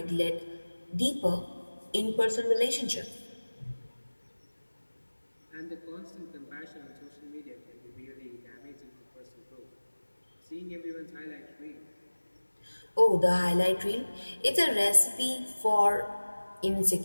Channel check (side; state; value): both; inverted; correlation -1.00